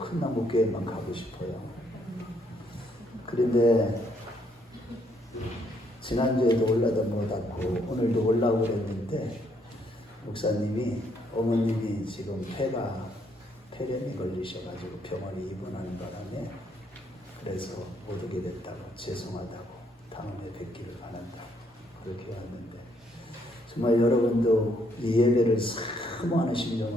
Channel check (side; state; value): both; normal; correlation 0.71